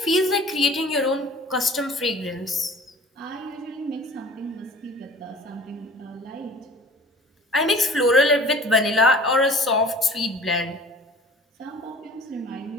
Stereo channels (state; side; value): normal; both; correlation 0.46